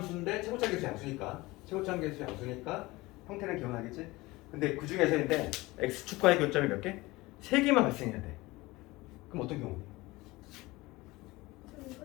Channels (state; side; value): quieter; right; 20.9 dB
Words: 최고차 계수 양수니까 형태는 기억나겠지? 근데 그 중에서인데 x축과의 교점이 몇 개? 3개만 발생해야 돼. 그럼 어떤 경우?